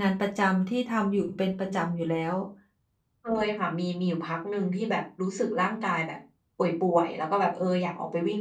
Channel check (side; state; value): both; identical; correlation 1.00